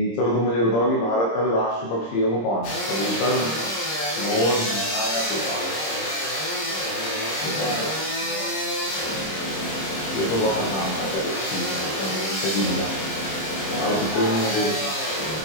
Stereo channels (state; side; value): late; right; 26 ms